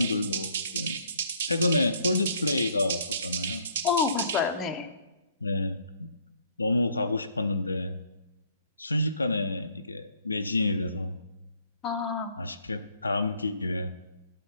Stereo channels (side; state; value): both; inverted; correlation -0.63